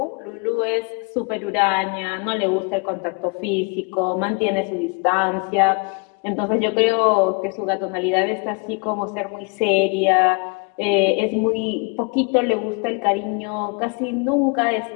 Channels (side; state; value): right; quieter; 34.0 dB